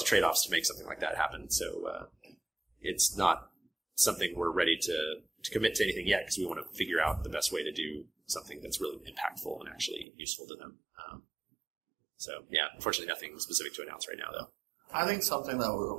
of trade-offs to make something like that happen. So it's not something we're ready to commit to anything yet because we want to figure out the best way to do something that's really impactful and actually useful to them. Unfortunately nothing specific to announce right now, though. I think something that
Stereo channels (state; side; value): drops out; left; at 10.1 s